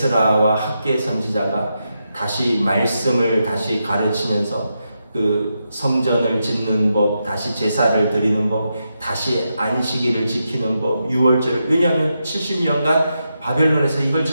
학개 선지자가 다시 말씀을 다시 가르치면서 성전을 짓는 법, 다시 제사를 드리는 법, 다시 안식일을 지키는 법, 유월절을. 왜냐하면 70년간 바벨론에서 이걸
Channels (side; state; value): both; inverted; correlation -0.86